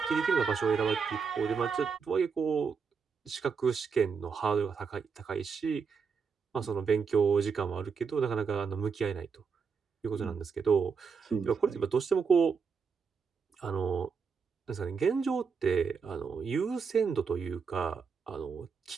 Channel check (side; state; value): left; quieter; 5.7 dB